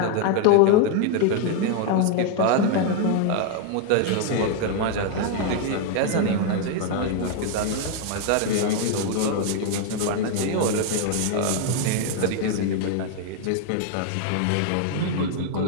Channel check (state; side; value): different; both; correlation 0.00